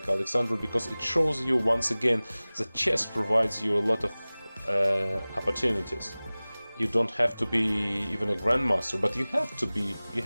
Alexandra, because it shows you once again that chess provides you a lot of opportunities. You don't have to be even a grandmaster, but you have to be,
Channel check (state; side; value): inverted; both; correlation -0.99